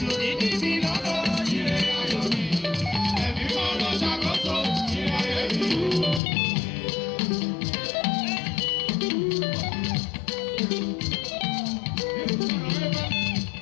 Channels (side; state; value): right; drops out; at 6.2 s